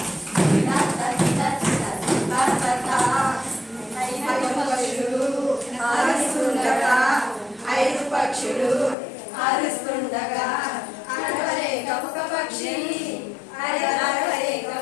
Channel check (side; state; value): right; drops out; at 9.0 s